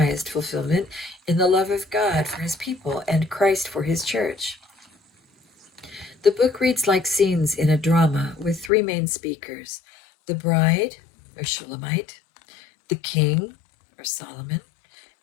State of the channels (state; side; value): drops out; right; at 8.7 s